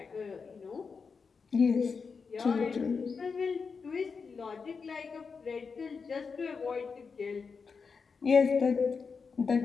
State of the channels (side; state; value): right; quieter; 5.3 dB